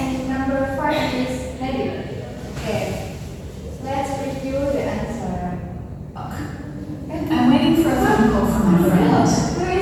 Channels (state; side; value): identical; both; correlation 1.00